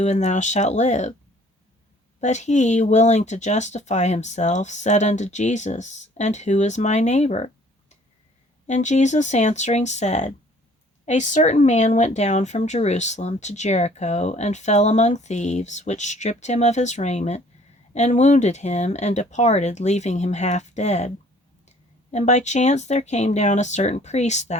and thou shalt live. But he, willing to justify himself, said unto Jesus, And who is my neighbor? And Jesus answering said, A certain man went down from Jerusalem to Jericho, and fell among thieves, which stripped him of his raiment, and wounded him, and departed, leaving him half dead. And by chance there came down a certain priest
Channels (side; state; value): both; normal; correlation 0.56